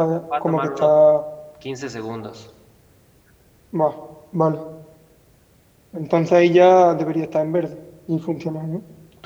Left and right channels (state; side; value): identical; both; correlation 1.00